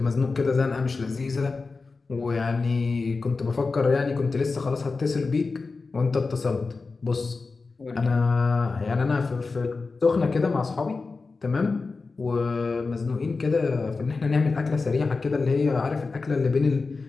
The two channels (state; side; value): quieter; right; 4.1 dB